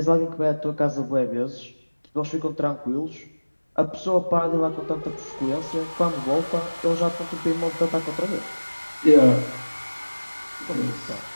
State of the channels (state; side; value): inverted; both; correlation -1.00